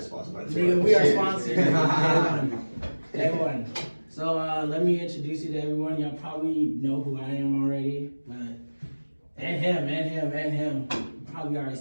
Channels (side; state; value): both; inverted; correlation -1.00